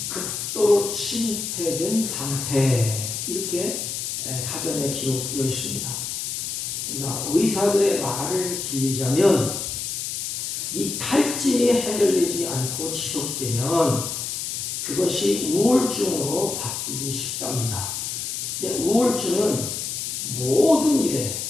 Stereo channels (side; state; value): left; noise; hiss, 4 dB below the sound